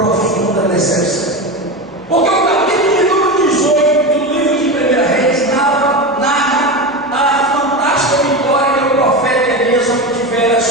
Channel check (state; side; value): noise; left; hum, 30 dB below the sound